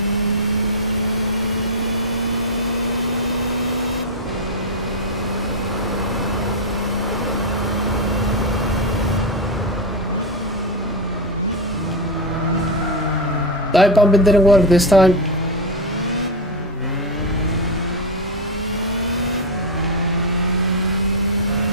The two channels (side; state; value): both; normal; correlation 0.07